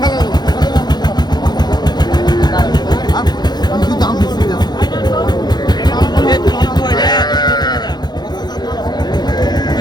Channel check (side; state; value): right; late; 0.20 ms